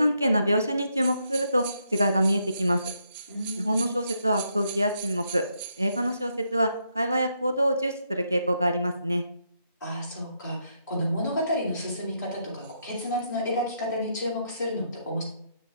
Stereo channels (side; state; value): both; inverted; correlation -0.77